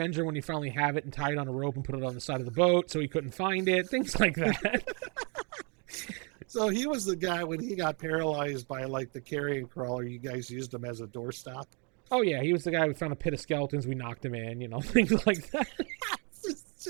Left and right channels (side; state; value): left; quieter; 34.7 dB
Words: when you finally have it and tie it on a rope and put it on the side of the boat so he couldn't find it. Things like that. So he was the guy when he got paralyzed by like the carrion crawler. You guys used him as a doorstop. Oh yeah, he was the guy who found a pit of skeletons. We knocked him in. Things like that.